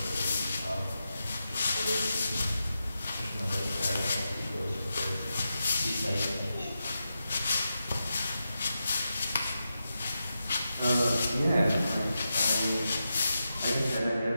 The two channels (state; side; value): inverted; both; correlation -0.88